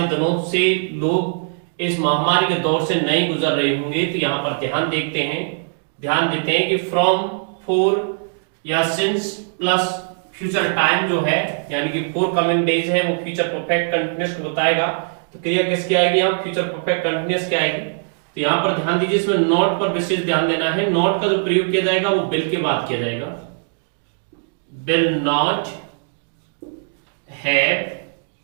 दिनों से लोग इस महामारी के दौर से नहीं गुजर रहे होंगे। तो यहां पर ध्यान देते हैं कि फ्रॉम फॉर या सिंस प्लस फ्यूचर टाइम जो है यानी कि फॉर कमिंग डेज है वो फ्यूचर परफेक्ट कंटीन्यूअस को बताएगा। तो क्रिया किसकी आएगी यहां फ्यूचर परफेक्ट कंटीन्यूअस की आएगी। तो यहां पर ध्यान दीजिए इसमें नॉट पर विशेष ध्यान देना है। नॉट का जो प्रयोग किया जाएगा वो बिल के बाद किया जाएगा। Will not have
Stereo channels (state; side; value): silent; left; digital silence